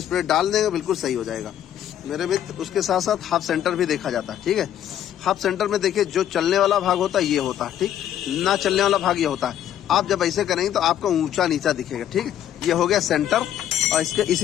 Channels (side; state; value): right; quieter; 10.8 dB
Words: प्लेट डाल देंगे बिल्कुल सही हो जाएगा मेरे मित्र। उसके साथ साथ हाफ सेंटर भी देखा जाता है, ठीक है। हाफ सेंटर में देखिए, जो चलने वाला भाग होता है ये होता है, ठीक, ना चलने वाला भाग ये होता है। आप जब ऐसे करेंगे तो आपको ऊंचा नीचा दिखेगा, ठीक है। ये हो गया सेंटर, और इसके